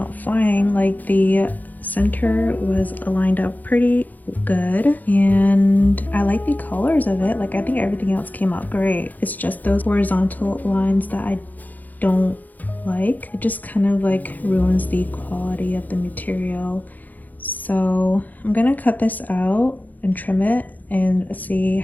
fine. Like the center was lined up pretty good and I like the colors of it. Like I think everything else came out great. It's just those horizontal lines that I don't like. It just kind of like ruins the quality of the material. So I'm gonna cut this out and trim it and see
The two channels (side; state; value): right; late; 0.082 ms